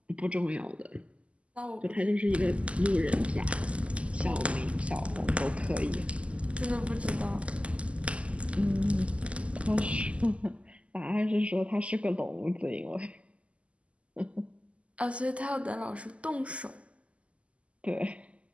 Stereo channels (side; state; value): left; late; 0.060 ms